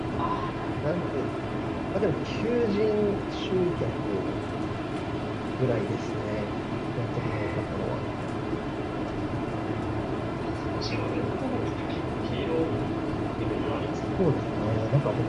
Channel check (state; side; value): identical; both; correlation 1.00